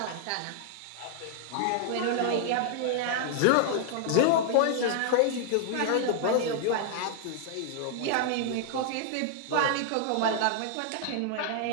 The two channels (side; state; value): both; different; correlation 0.00